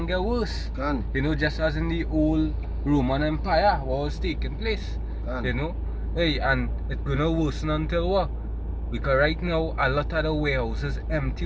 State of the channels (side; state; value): both; identical; correlation 1.00